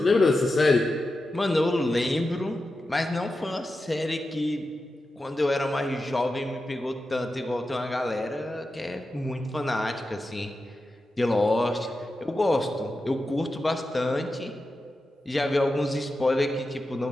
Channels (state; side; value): normal; both; correlation 0.91